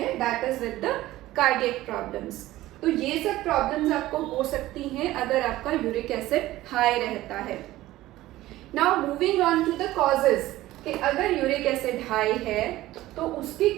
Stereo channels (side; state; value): left; quieter; 16.2 dB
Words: that is with the cardiac problems. तो ये सब प्रॉब्लम्स आपको हो सकती हैं अगर आपका यूरिक एसिड हाई रहता है। Now moving on to the causes, कि अगर यूरिक एसिड हाई है तो उसके